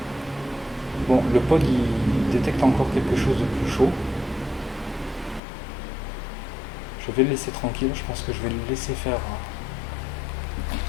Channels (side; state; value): right; drops out; at 5.4 s